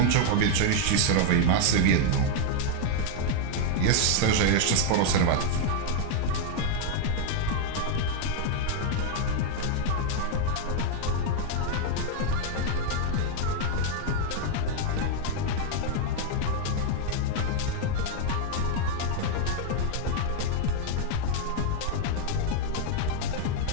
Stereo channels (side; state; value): both; different; correlation 0.00